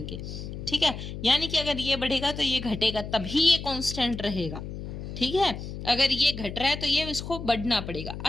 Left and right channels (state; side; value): noise; left; hum, 8 dB below the sound